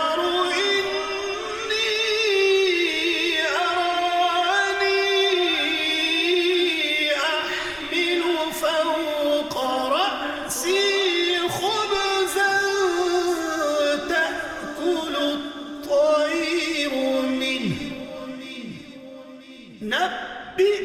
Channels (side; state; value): both; identical; correlation 1.00